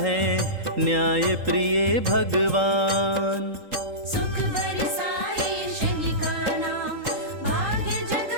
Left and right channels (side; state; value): left; late; 3.8 ms